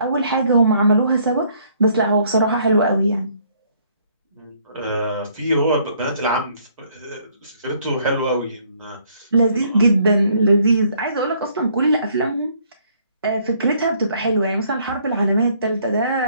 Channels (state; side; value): inverted; both; correlation -0.65